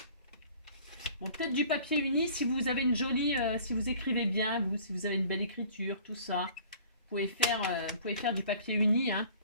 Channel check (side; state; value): both; inverted; correlation -0.50